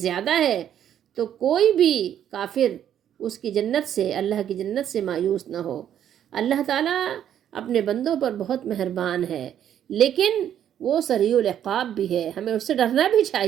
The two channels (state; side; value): quieter; left; 10.1 dB